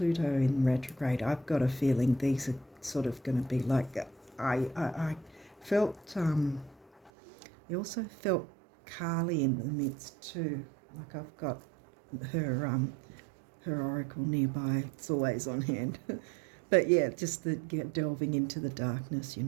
in retrograde, I've got a feeling these are sort of going to be like. I felt. I also felt Carly in the midst too. Like I've got her oracle nearby. It's always on hand. But yeah, just delving into the darkness, you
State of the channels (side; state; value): left; drops out; at 7.1 s